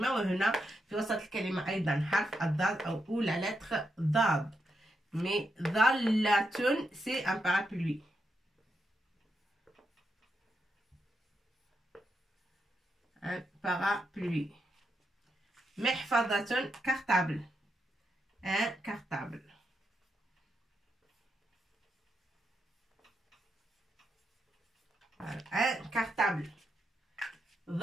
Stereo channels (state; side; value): normal; both; correlation 0.83